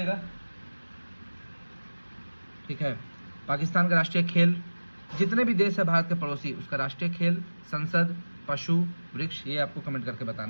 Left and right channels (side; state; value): both; inverted; correlation -1.00